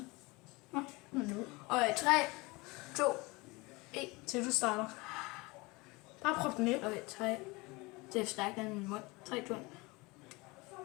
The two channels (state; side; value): quieter; right; 24.3 dB